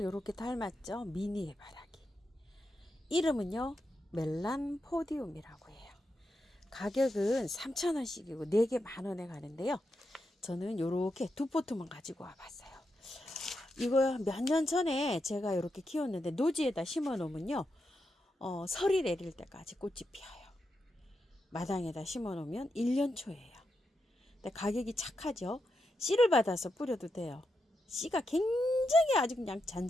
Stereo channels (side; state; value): both; normal; correlation 0.86